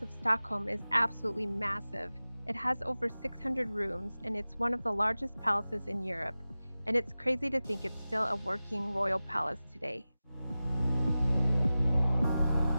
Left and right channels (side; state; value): both; inverted; correlation -0.96